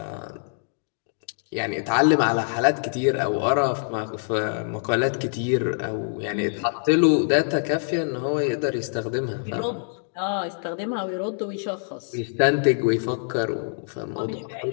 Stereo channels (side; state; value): right; silent; digital silence